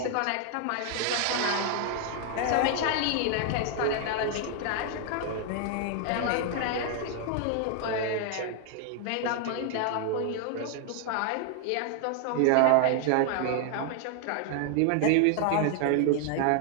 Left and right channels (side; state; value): both; different; correlation 0.00